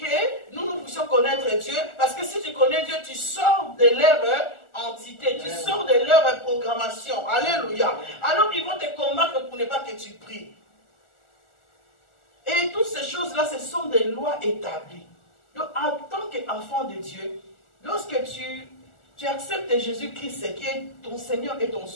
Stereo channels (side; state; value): right; late; 1.4 ms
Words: nous puissions connaître Dieu. Parce que si tu connais Dieu, tu sors de leur entité, tu sors de leur programmation. Alléluia. Alors ils vont te combattre pour ne pas que tu pries. Et toutes ces choses-là, ce sont des lois établies. Donc en tant qu'enfant de Dieu, lorsque tu acceptes Jésus-Christ qui est ton Seigneur et ton